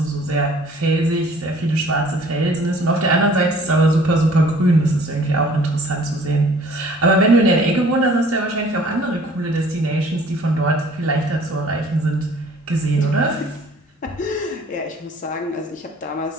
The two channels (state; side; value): normal; both; correlation 0.53